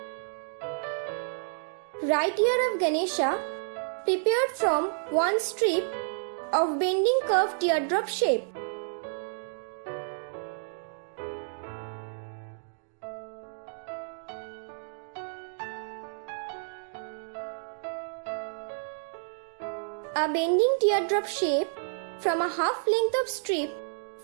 Right ear of Ganesha prepared from 1 strip of bending curved teardrop shape. A bending teardrop shape from a half length of strip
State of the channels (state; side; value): silent; left; digital silence